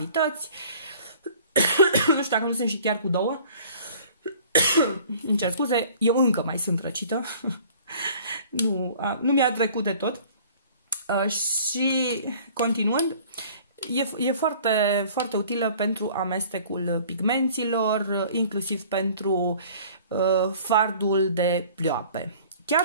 Nu știu dacă nu sunt și chiar cu 2. Îmi cer scuze, eu încă mai sunt răcită. Nu mi-a trecut de tot. Și continuând, e foarte, foarte utilă pentru amestecul pigmenților, inclusiv pentru fardul de plioape. Chiar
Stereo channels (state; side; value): inverted; both; correlation -0.50